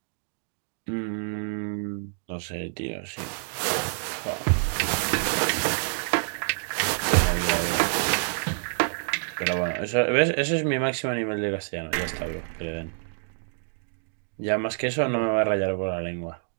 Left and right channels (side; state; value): left; silent; digital silence